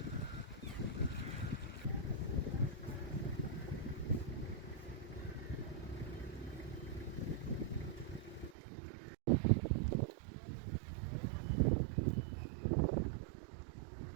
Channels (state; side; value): drops out; left; at 8.6 s